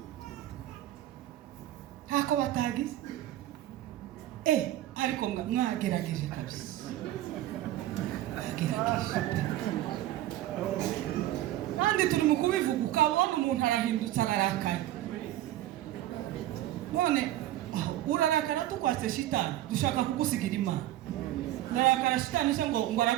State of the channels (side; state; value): left; quieter; 14.0 dB